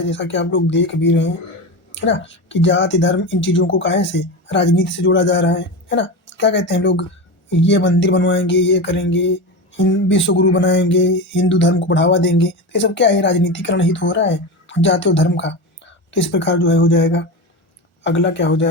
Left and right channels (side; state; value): right; late; 1.4 ms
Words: जैसा कि आप लोग देख भी रहे हैं, है ना, कि जाति धर्म इन चीज़ों को काहे से राजनीति से जोड़ा जा रहा है ना। क्या कहते हैं लोग, ये मंदिर बनवाएंगे, ये करेंगे, विश्व गुरु बनाएंगे, हिंदू धर्म को बढ़ावा देंगे, तो ये सब क्या है, राजनीतिकरण ही तो हो रहा है। जाति और धर्म का। तो इस प्रकार जो है हो जाएगा। अगला क्या हो